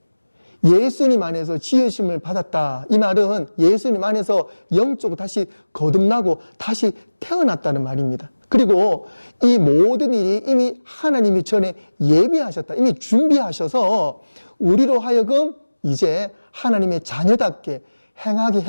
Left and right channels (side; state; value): both; inverted; correlation -1.00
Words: 예수님 안에서 지으심을 받았다. 이 말은 예수님 안에서 영적으로 다시 거듭나고 다시 태어났다는 말입니다. 그리고 이 모든 일이 이미 하나님이 전에 예비하셨다. 이미 준비하셔서 우리로 하여금 이제 하나님의 자녀답게